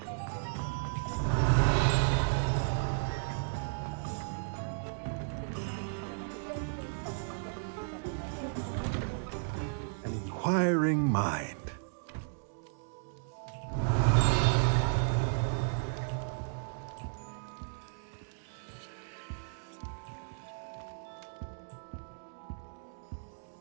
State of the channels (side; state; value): left; silent; digital silence